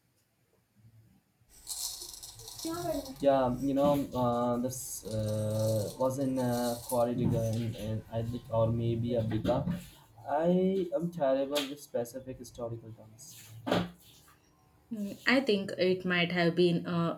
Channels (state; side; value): identical; both; correlation 1.00